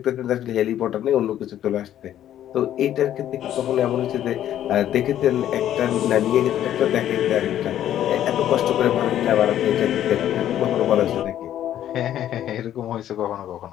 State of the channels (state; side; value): quieter; right; 11.5 dB